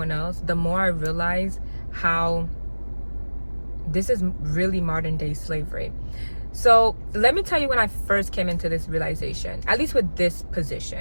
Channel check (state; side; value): inverted; both; correlation -1.00